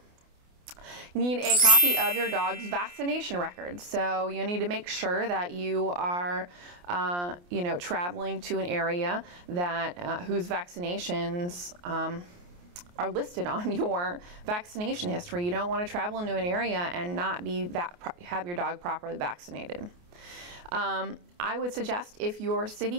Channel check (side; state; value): left; late; 28 ms